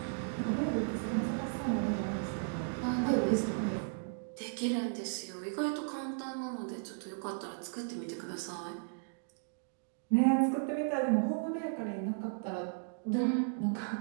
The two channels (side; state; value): left; silent; digital silence